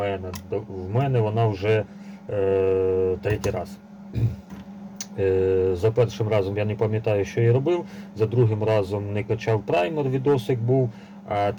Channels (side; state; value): both; identical; correlation 1.00